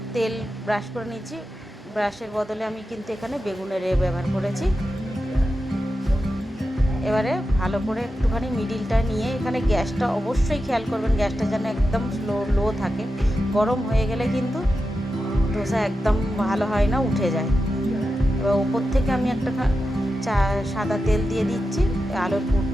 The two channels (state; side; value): normal; both; correlation 0.90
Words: তেল ব্রাশ করে নিচ্ছি। ব্রাশের বদলে আমি কিন্তু এখানে বেগুনের ব্যবহার করেছি। এবারে ভালো করে একটুখানি মিডিলটা নিয়ে, এখানে গ্যাসটা অবশ্যই খেয়াল করবেন, গ্যাসটা যেন একদম লো থাকে। গরম হয়ে গেলে কিন্তু ধোসা একদম ভালো হয় না, উঠে যায়। এবার ওপর থেকে আমি একটা সাদা তেল দিয়ে দিচ্ছি, আলুর